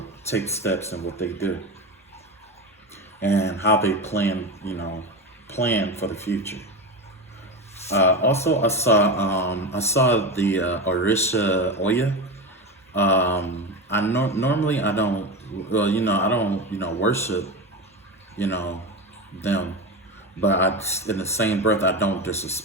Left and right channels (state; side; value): normal; both; correlation 0.21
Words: take steps and what they do and how they plan, plan for the future. Also, I saw the Orisha Oya. Normally I don't, I don't, worship, them, but in the same breath, I don't